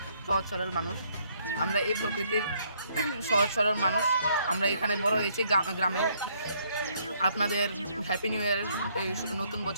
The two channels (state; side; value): inverted; both; correlation -0.68